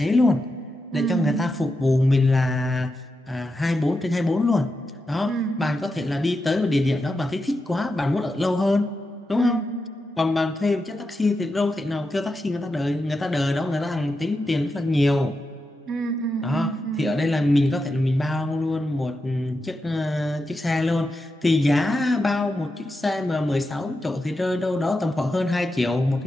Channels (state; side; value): normal; both; correlation 0.88